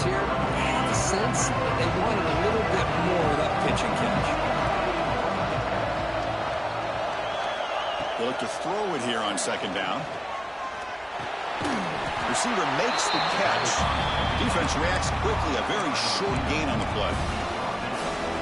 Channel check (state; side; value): identical; both; correlation 1.00